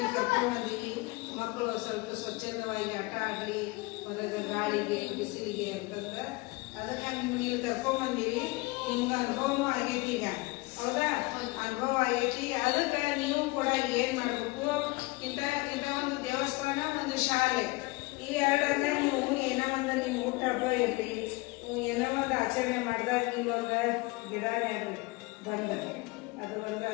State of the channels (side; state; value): right; quieter; 23.6 dB